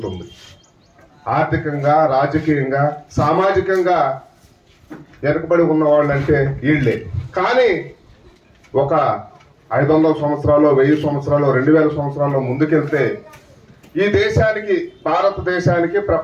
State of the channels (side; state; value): both; identical; correlation 1.00